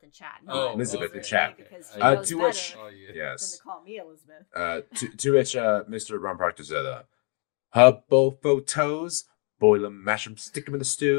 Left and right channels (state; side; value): quieter; right; 37.1 dB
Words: in chat. Elizabeth in chat. To which, yes. Than to call me Elizabeth. To which Mr. Ron Proctor said, "Hubble photos, boil them, mash them, stick them in the